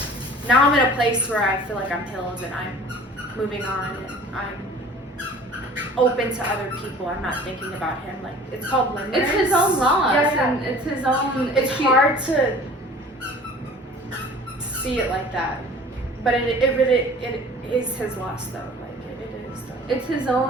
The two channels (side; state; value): both; normal; correlation 0.46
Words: I'm in a place where I feel like I'm healed and I'm moving on and I'm open to other people. I'm not thinking about him. Like, it's called limerence. It's his own loss, Yeah. and it's his own. It's hard to see it like that, but it is his loss though. Like it is though. It's his